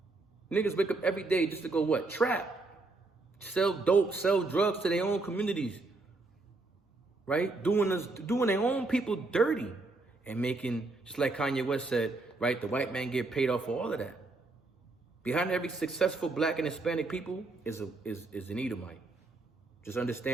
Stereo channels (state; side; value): quieter; left; 3.4 dB